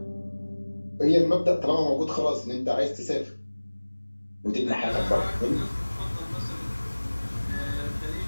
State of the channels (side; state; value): both; inverted; correlation -1.00